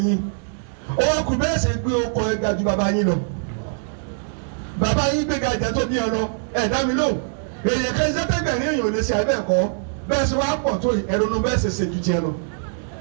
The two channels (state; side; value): silent; left; digital silence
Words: ó wá kú bẹ́ẹ̀ ṣe gbé ọkọ̀ ẹ̀ga ju bàbá yín lọ bàbá yín gbé ga ìjà tó bí ọ lọ ẹ̀ dá mi lò èèyàn kan sẹ́tẹ̀gbẹ̀rin èèyàn ò lè ṣe ẹ̀bẹ̀ kọ́ bẹ́ẹ̀ ṣe wá pọ̀ tó ẹ̀rọ̀nù bẹ́ẹ̀ ṣe ṣe ju tiẹ̀ lọ.